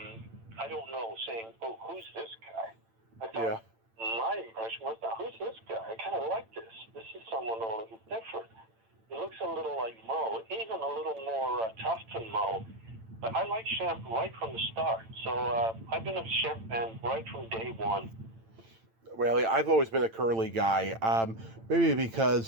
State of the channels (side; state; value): left; late; 8.9 ms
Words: saying, oh, who's this guy? I thought my impression was, now, who's this guy? I kind of like this. This is someone a little different. He looks a little like Moe, even a little more tough than Moe. But I like Shem right from the start. So I've been a Shem fan right from day one. Well, I've always been a curly guy. Maybe